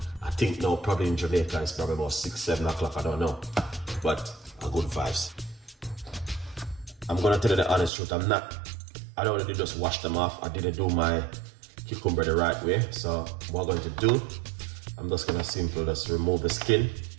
think now probably in Jamaica it's probably about 6, 7 o'clock, I don't know, but a good vibes. I'm gonna tell you the honest truth, I don't really just wash them off. I didn't do my cucumber the right way. So what I'm going to do, I'm just gonna simply just remove the skin.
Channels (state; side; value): drops out; left; at 7.9 s